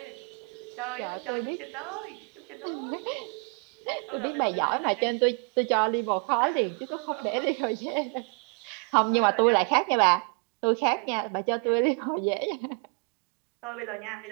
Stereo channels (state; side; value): quieter; left; 35.9 dB